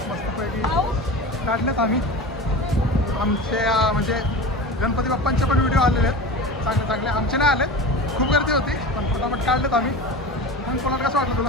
मस्तपैकी काढलेत आम्ही. आमच्या म्हणजे गणपती बाप्पांचे पण व्हिडिओ आलेले आहेत चांगले चांगले. आमचे नाही आले, खूप गर्दी होती पण फटाफट काढलेत आम्ही. मग कोणाला कसं वाटलं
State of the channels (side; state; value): both; normal; correlation 0.31